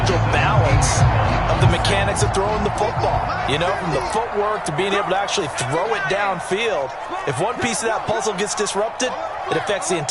balance of the mechanics of throwing the football. You know, from the footwork to being able to actually throw it downfield. If one piece of that puzzle gets disrupted, it affects the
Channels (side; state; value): both; identical; correlation 1.00